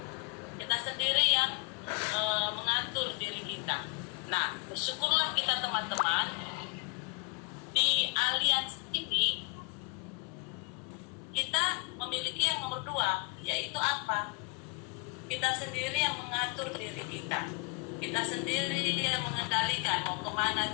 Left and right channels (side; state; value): right; quieter; 30.0 dB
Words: Kita sendiri yang mengatur diri kita. Nah, bersyukurlah kita teman-teman, di aliansi ini kita memiliki yang nomor 2, yaitu apa? Kita sendiri yang mengatur diri kita. Kita sendiri yang mengendalikan mau kemana